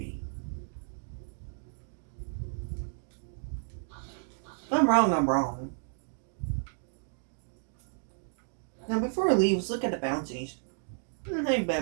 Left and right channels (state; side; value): silent; left; digital silence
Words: If I'm wrong, I'm wrong. Now before we leave, let's look at the bounties. Ain't